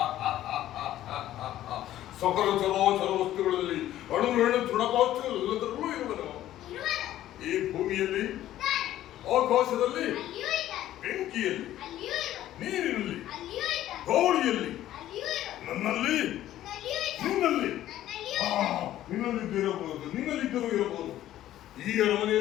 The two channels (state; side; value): quieter; right; 13.2 dB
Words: ಸಕಲ ಚರಾಚರ ವಸ್ತುಗಳಲ್ಲಿ ಅಣು ರೇಣು ತೃಣಕಾಷ್ಟಗಳೆಲ್ಲದರಲ್ಲೂ ಇರುವನು. ಈ ಭೂಮಿಯಲ್ಲಿ, ಆಕಾಶದಲ್ಲಿ, ಬೆಂಕಿಯಲ್ಲಿ, ನೀರಿನಲ್ಲಿ, ಗಾಳಿಯಲ್ಲಿ, ನನ್ನಲ್ಲಿ, ನಿನ್ನಲ್ಲಿ, ನಿನ್ನಲ್ಲಿದ್ದಿರಬಹುದು, ನಿನ್ನಲ್ಲಿದ್ದರೂ ಇರಬಹುದು. ಈ